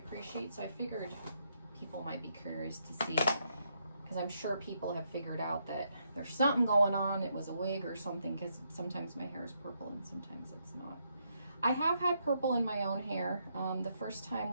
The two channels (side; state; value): both; inverted; correlation -0.77